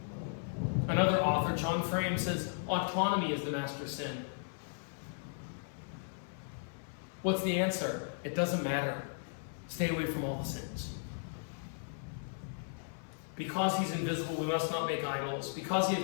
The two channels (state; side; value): silent; right; 54 dB below the other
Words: Another author, John Frame, says autonomy is the master sin. What's the answer? It doesn't matter. Stay away from all the sins. Because he's invisible, we must not make idols. Because he is